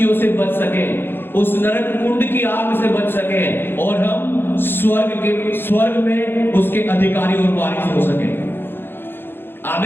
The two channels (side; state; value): right; late; 0.10 ms